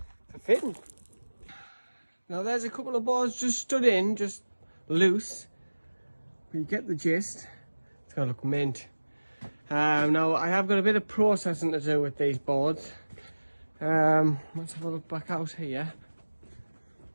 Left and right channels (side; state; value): both; inverted; correlation -1.00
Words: for fitting. Now there's a couple of boards just stood in, just loose. But you get the gist. It's gonna look mint. Now I have got a bit of processing to do with these boards. Let's have a look back out here.